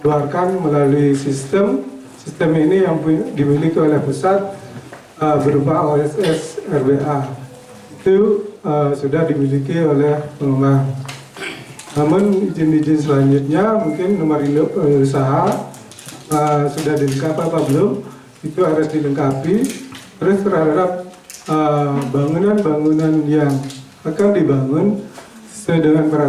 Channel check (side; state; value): both; identical; correlation 1.00